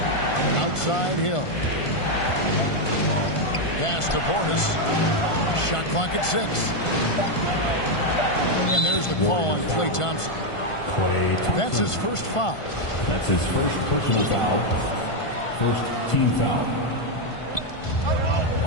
Outside Hill. Pass to Portis. Shot clock at 6. And there's the call on Klay Thompson. That's his first foul. That's his first personal foul. First team foul.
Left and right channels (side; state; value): right; late; 1.5 ms